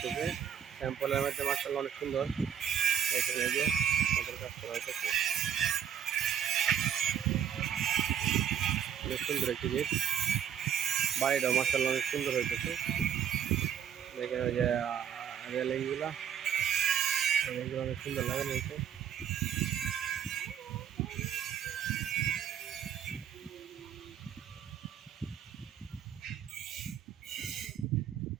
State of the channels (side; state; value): left; quieter; 8.8 dB